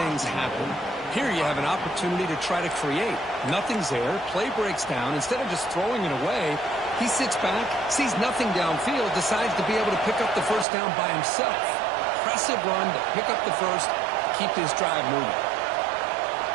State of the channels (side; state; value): left; drops out; at 10.7 s